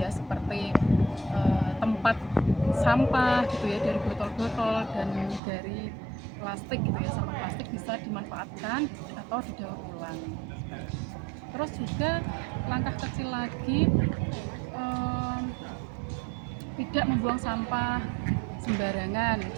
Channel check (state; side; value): drops out; left; at 5.4 s